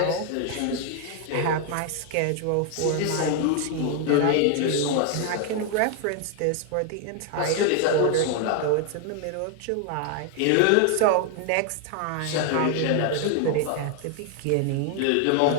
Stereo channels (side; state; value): both; different; correlation 0.00